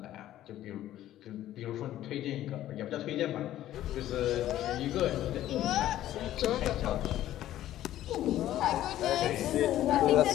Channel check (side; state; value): right; quieter; 13.2 dB